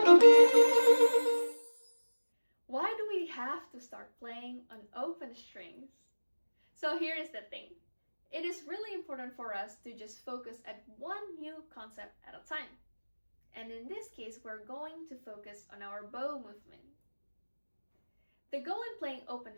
Why do we have to start playing on open strings? So here is the thing. It is really important for us to just focus at one new concept at a time. And in this case, we're going to focus on our bow movement. The goal in playing open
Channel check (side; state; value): both; inverted; correlation -1.00